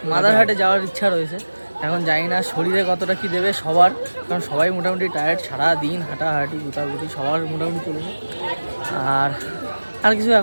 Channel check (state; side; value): inverted; both; correlation -1.00